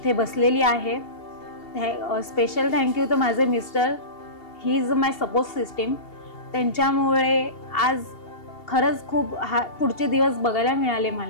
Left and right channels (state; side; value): late; right; 2.8 ms